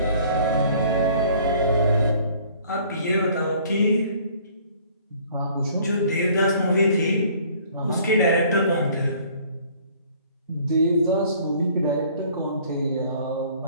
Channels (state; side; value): inverted; both; correlation -0.55